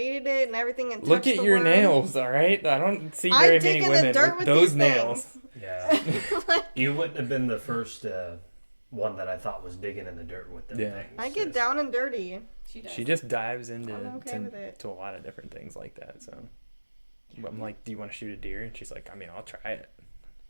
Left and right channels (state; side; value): inverted; both; correlation -1.00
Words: it and everything and Look touched at the your worm. nails, all right? I don't see I very dig many in the women dirt with with those these nails. things. Yeah, you wouldn't have been the first one that I thought was digging in the dirt with them Yeah. things. I get It's- down and dirty. She does. She just dives into I'm okay with it. to a lot of different things like that. So I'm like, do you want to shoot a deer? And she's like, I mean, I'll try it.